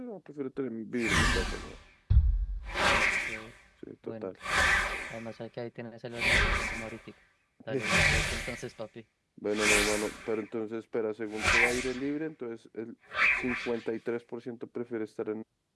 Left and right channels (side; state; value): both; identical; correlation 1.00